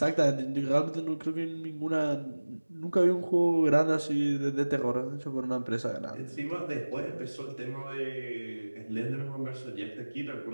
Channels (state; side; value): inverted; both; correlation -1.00